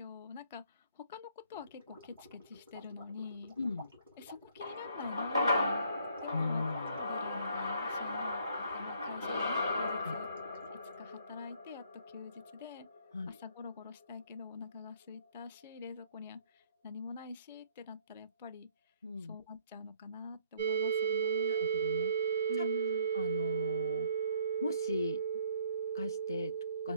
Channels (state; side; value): inverted; both; correlation -0.64